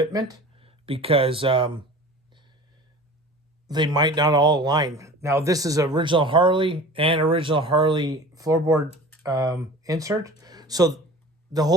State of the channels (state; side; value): normal; both; correlation 0.40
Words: because they might not all align. Now, this is original Harley and original Harley floorboard insert, so the